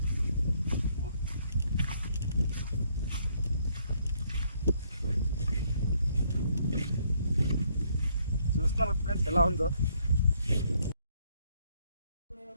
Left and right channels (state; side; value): inverted; both; correlation -0.69